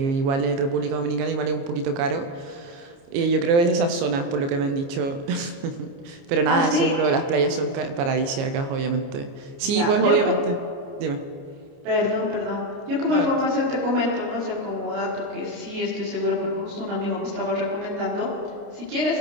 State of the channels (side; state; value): left; late; 29 ms